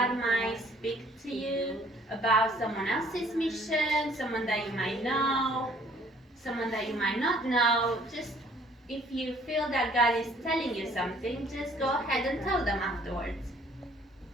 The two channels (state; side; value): normal; both; correlation 0.58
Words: might speak to you about someone else's mission, someone that you might know, someone that you might not know. Just if you feel that God is telling you something, just go ahead and tell them afterwards.